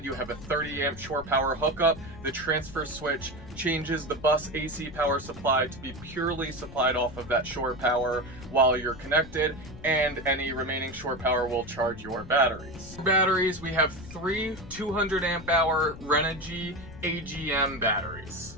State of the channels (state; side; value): noise; left; rumble, 15 dB below the sound